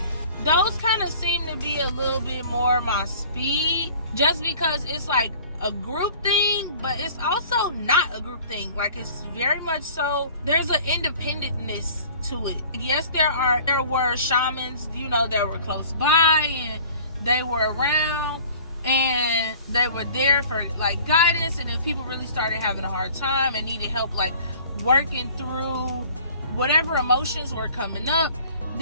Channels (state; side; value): inverted; both; correlation -0.48